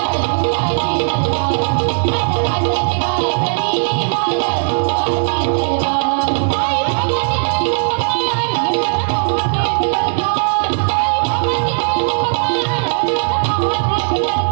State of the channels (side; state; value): left; silent; digital silence